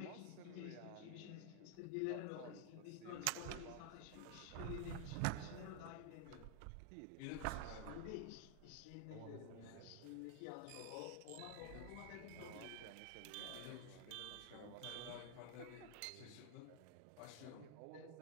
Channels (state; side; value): different; both; correlation 0.00